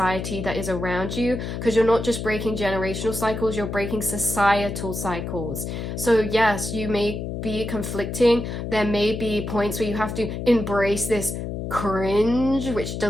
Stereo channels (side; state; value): left; noise; hum, 5 dB below the sound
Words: that is around you, because you're not just breaking generational cycles, you're breaking societal cycles. So yes, you may be conflicting. There may be points where you have to embrace this cringe, which